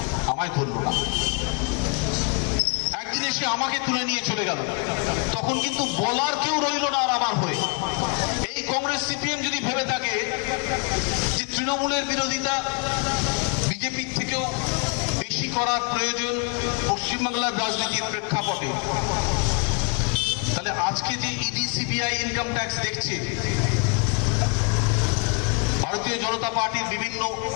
আমায় ধরলো না। একদিন এসে আমাকে তুলে নিয়ে চলে গেল। তখন কিন্তু বলার কেউ রইল না আর আমার হয়ে। এই কংগ্রেস সিপিএম যদি ভেবে থাকে যে তৃণমূলের বিরোধিতা বিজেপির থেকেও বেশি করার প্রয়োজন পশ্চিমবাংলার রাজনীতির প্রেক্ষাপটে, তাহলে আজকে যে ইডি সিবিআই ইনকাম ট্যাক্স দেখছে, ভারতীয় জনতা পার্টির বিভিন্ন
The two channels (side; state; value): right; quieter; 35.2 dB